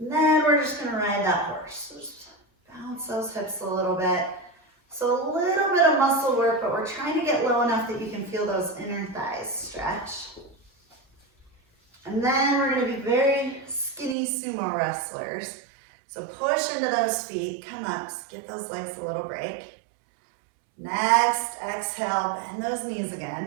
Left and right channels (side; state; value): left; drops out; at 14.2 s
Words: then we're just going to ride that horse. So just bounce those hips a little bit. So a little bit of muscle work, but we're trying to get low enough that you can feel those inner thighs stretch. And then we're going to be very skinny sumo wrestlers. So push into those feet, come up, give those legs a little break. Next, exhale, bend those knees